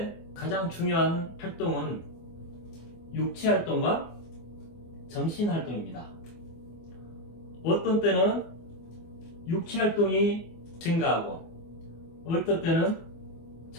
가장 중요한 활동은 육체 활동과 정신 활동입니다. 어떤 때는 육체 활동이 증가하고 어떤 때는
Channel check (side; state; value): right; late; 24 ms